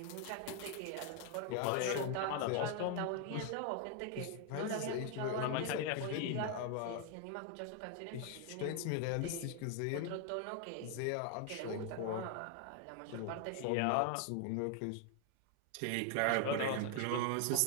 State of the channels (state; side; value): different; both; correlation 0.00